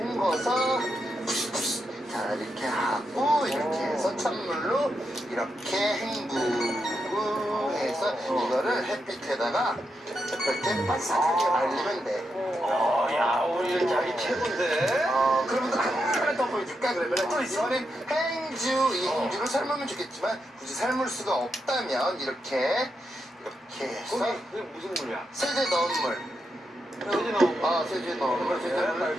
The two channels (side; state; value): both; normal; correlation 0.84